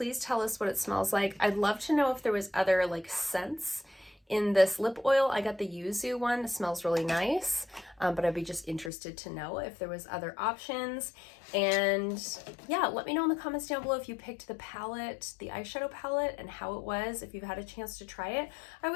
tell us what it smells like. I'd love to know if there was other like scents In this lip oil, I got the yuzu one. It smells really nice, but I'd be just interested to know if there was other options. And yeah, let me know in the comments down below if you picked the palette, the eyeshadow palette, and how it was, if you've had a chance to try it. I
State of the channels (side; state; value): right; drops out; at 8.9 s